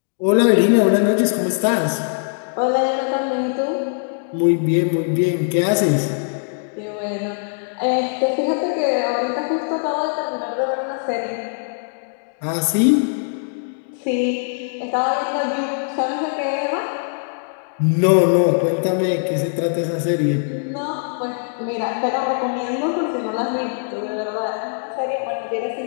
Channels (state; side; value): silent; right; digital silence